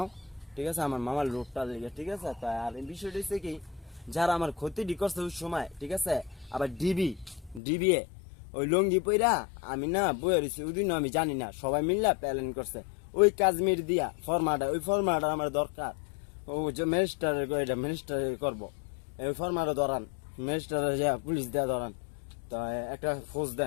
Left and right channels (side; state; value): right; drops out; at 7.6 s